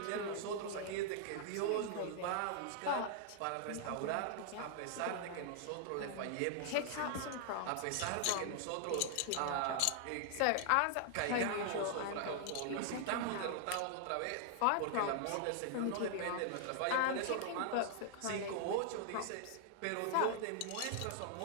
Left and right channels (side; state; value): both; different; correlation 0.00